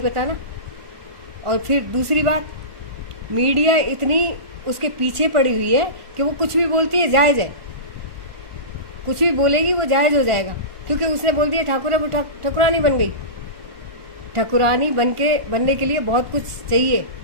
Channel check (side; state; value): left; late; 1.4 ms